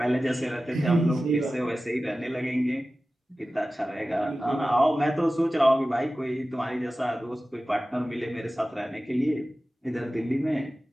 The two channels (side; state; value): both; normal; correlation 0.95